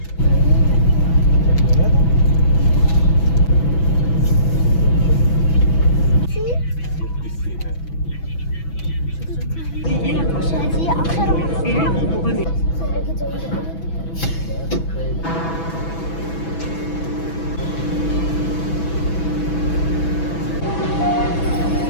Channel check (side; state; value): right; late; 6.1 ms